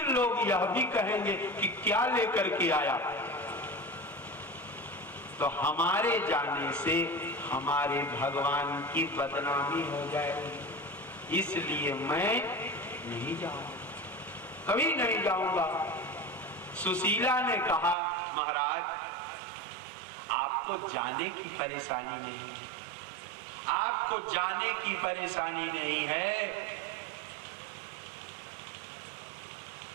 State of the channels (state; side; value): drops out; left; at 17.9 s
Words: लोग यह भी कहेंगे कि क्या लेकर के आया। तो हमारे जाने से हमारे भगवान की बदनामी हो जाएगी, इसलिए मैं नहीं जाऊंगा, कभी नहीं जाऊंगा। सुशीला ने कहा महाराज आपको जाने की परेशानी नहीं है, आपको जाने की परेशानी नहीं है,